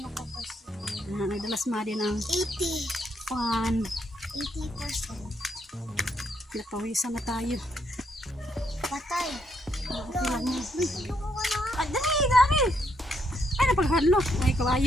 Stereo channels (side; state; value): both; normal; correlation 0.74